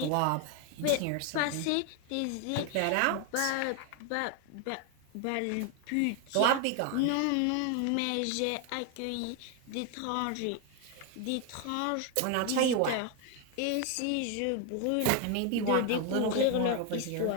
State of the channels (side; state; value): both; different; correlation 0.01